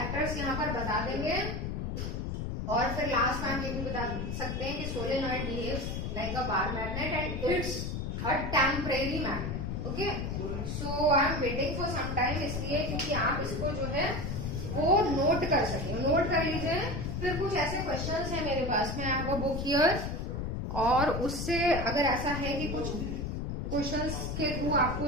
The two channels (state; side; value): noise; left; rumble, 3 dB below the sound